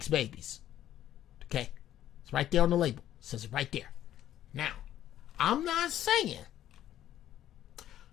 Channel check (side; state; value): right; quieter; 12.0 dB